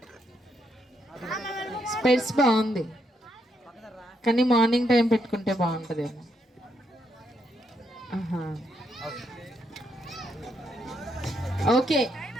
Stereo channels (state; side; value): normal; both; correlation 0.77